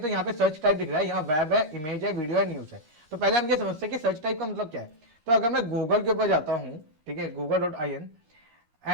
यहाँ पे सर्च टाइप दिख रहा है, यहाँ वेब है, इमेज है, वीडियो है, न्यूज है। तो पहले हम ये समझते हैं कि सर्च टाइप का मतलब क्या है। तो अगर मैं गूगल के ऊपर जाता हूँ, ठीक है, google.in,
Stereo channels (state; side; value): late; left; 13 ms